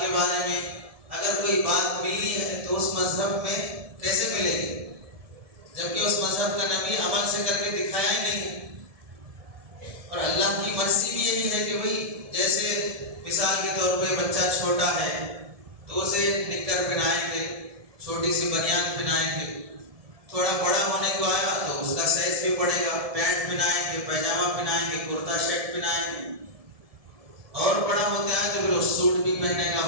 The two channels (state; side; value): late; left; 1.7 ms